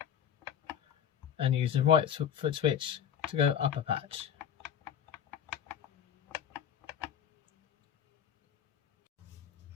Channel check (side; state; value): right; quieter; 8.7 dB